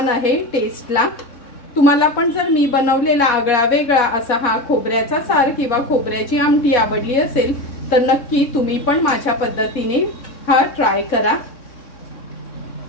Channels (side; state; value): right; late; 3.6 ms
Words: आहे टेस्टला। तुम्हाला पण जर मी बनवलेला आगळा वेगळा असा हा खोबऱ्याचा सार किंवा खोबऱ्याची आमटी आवडली असेल तर नक्की तुम्ही पण माझ्या पद्धतीने हा ट्राय करा।